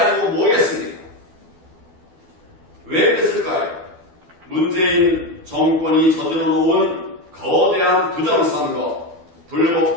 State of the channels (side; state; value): left; late; 12 ms